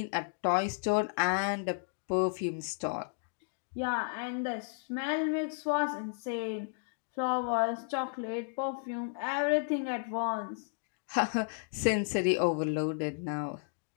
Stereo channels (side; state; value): right; silent; digital silence